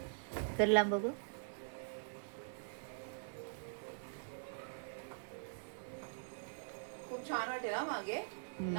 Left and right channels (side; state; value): left; silent; digital silence